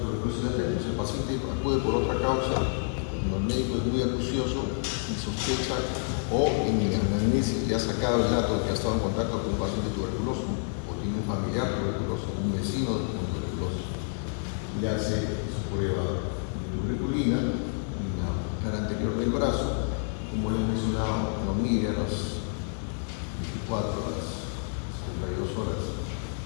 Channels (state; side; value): silent; right; 59 dB below the other